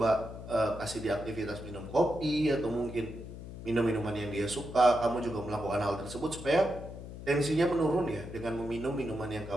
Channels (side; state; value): left; noise; hum, 11 dB below the sound